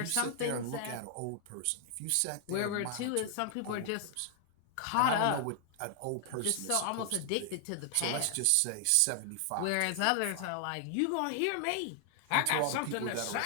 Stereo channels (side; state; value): both; different; correlation 0.00